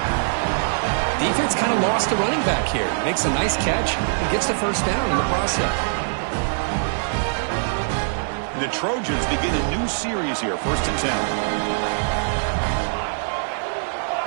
Defense kind of lost the running back here. Makes a nice catch and gets the first down in the process. The Trojans begin a new series here, 1st and 10.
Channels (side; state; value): left; silent; 64 dB below the other